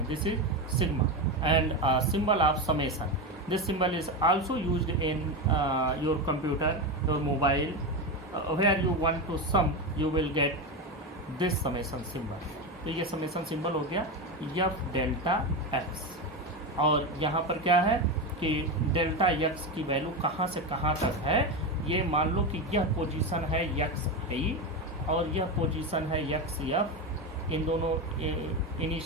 this is sigma and symbol of summation. This symbol is also used in your computer, your mobile, where you want to sum you will get this summation symbol. तो ये समेसन सिंबल हो गया F delta x, और यहाँ पर क्या है कि डेल्टा एक्स की वैल्यू कहाँ से कहाँ तक है, ये मान लो कि यह पोजीशन है एक्स आई और यह पोजीशन है एक्स एफ, इन दोनों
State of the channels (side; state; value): both; normal; correlation 0.16